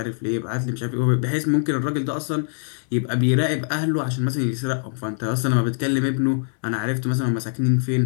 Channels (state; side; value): silent; right; digital silence